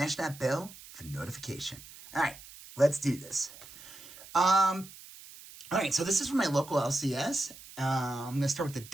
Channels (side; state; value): right; noise; hiss, 18 dB below the sound